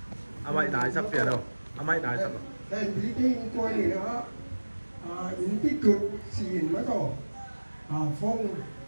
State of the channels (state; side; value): inverted; both; correlation -1.00